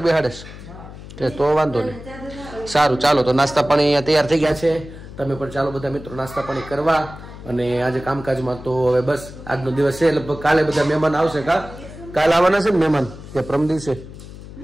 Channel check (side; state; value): left; noise; hum, 15 dB below the sound